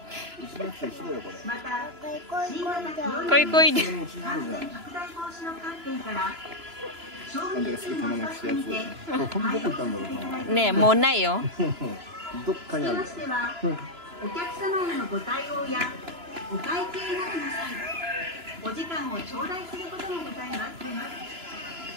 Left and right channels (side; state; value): left; late; 2.9 ms